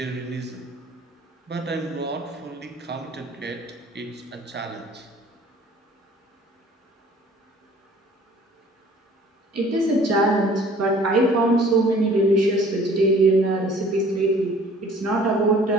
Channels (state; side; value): normal; both; correlation 0.52